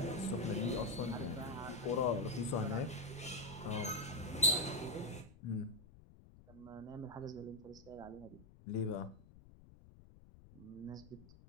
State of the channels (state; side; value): noise; left; rumble, 20 dB below the sound